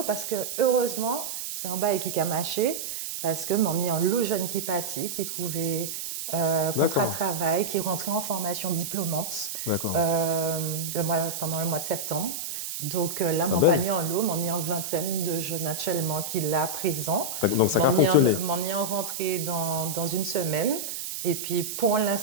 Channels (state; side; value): noise; right; hiss, 5 dB below the sound